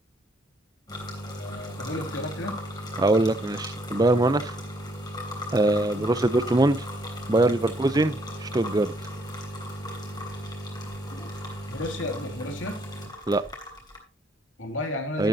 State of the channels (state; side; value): normal; both; correlation 0.68